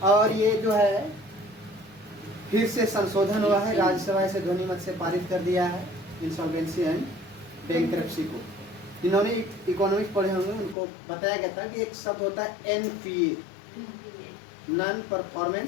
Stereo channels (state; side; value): drops out; right; at 10.8 s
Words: और ये जो है फिर से संशोधन हुआ है, राज्यसभा से ध्वनिमत से पारित कर दिया है इंसॉल्वेंसी एंड बैंक्रप्सी को। जिन्होंने इकोनॉमिक्स पढ़े होंगे उनको बताया गया था कि एक शब्द होता है एनपीए, नॉन